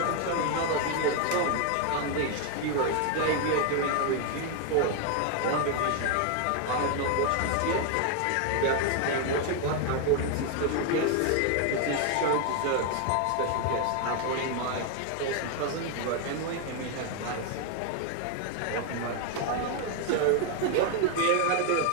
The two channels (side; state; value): both; different; correlation 0.01